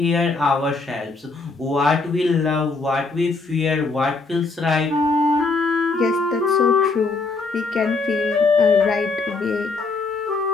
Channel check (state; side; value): quieter; right; 3.9 dB